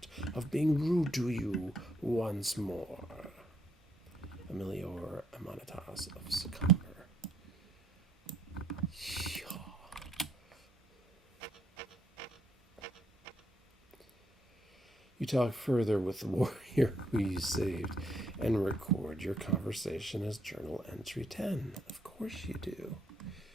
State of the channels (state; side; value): normal; both; correlation 0.72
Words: of being rude to you once more. Emilior Amanatas of Sycomber. You talk further with the warrior who you saved and record your conversation as journal entry 10. Of course you do.